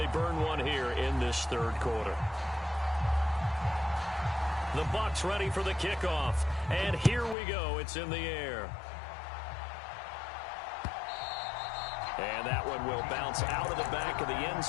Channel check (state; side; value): drops out; right; at 7.4 s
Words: burn one here in this 3rd quarter. The Bucs ready for the kickoff. And here we go. It's in the air. And that one will bounce out of the back of the end